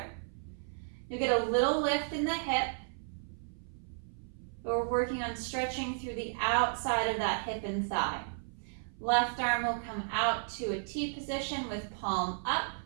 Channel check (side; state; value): left; silent; 55 dB below the other